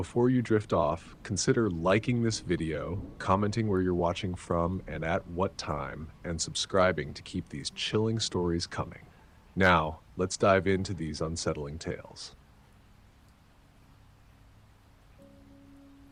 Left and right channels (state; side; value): identical; both; correlation 1.00